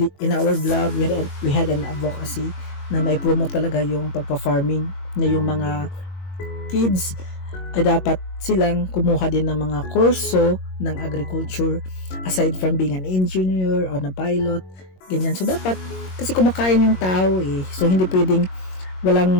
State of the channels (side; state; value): right; late; 22 ms